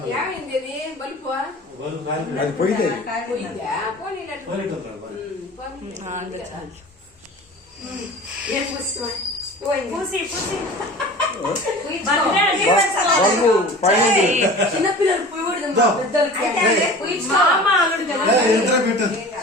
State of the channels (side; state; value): both; normal; correlation 0.39